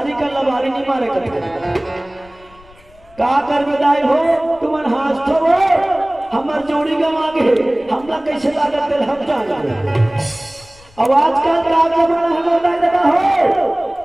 का लबारी नहीं मारे करते का कर बेदाई हो तुमन हाथ तो वो हमार जोड़ी गम आगे हमला कैसे लागत है हम जान अब आजकल का जमाना है बेदाई दादा हो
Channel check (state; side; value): noise; left; rumble, 26 dB below the sound